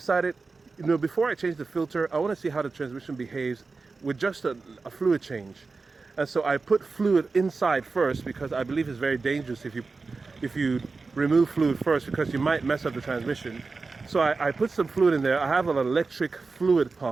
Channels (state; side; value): quieter; left; 4.1 dB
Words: you know, before I change the filter, I want to see how the transmission behaves with just a fluid change. And so I put fluid inside first, because I believe it's very dangerous if you remove fluid first, because you might mess up the transmission. So I put some fluid in there. I have an electric fluid